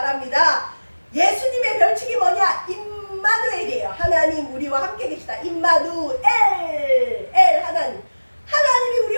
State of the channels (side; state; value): both; inverted; correlation -1.00